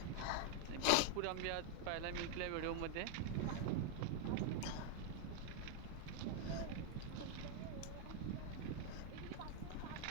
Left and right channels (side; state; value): both; different; correlation 0.00